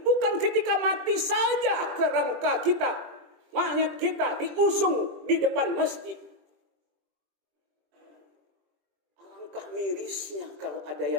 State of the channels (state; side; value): late; left; 20 ms